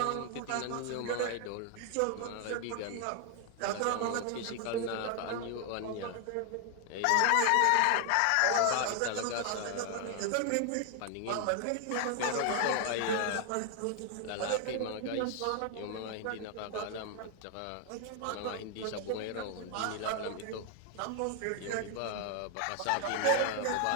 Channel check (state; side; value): different; both; correlation 0.00